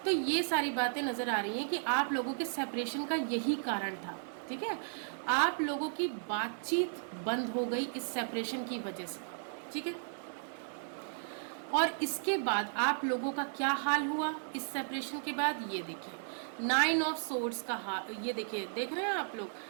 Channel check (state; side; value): silent; left; digital silence